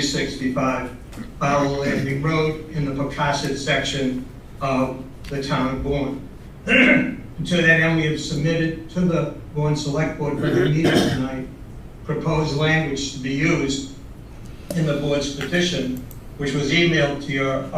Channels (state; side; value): identical; both; correlation 1.00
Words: Barlow Landing Road in the Pocasset section of the town of Bourne. To that end, we have submitted to the Bourne Select Board for the meeting tonight proposed language to be used in the board's petition, which was emailed to your